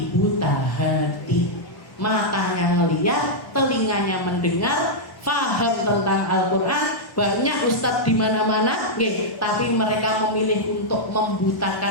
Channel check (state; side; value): late; right; 1.1 ms